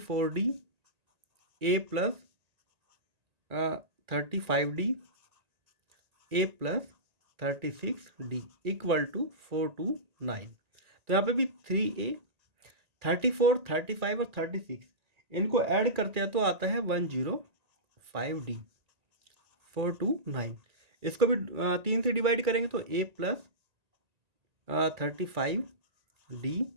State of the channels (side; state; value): left; late; 1.9 ms